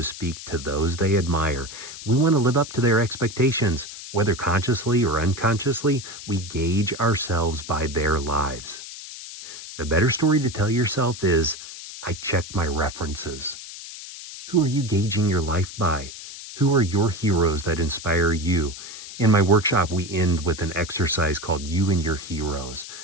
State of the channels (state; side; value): noise; left; hiss, 12 dB below the sound